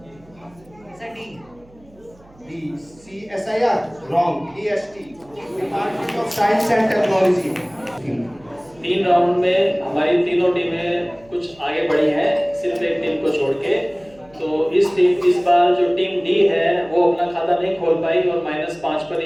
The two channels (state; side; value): noise; right; hum, 27 dB below the sound